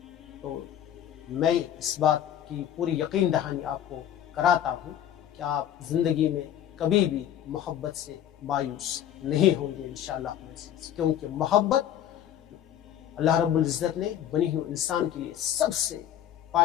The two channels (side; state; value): right; quieter; 10.5 dB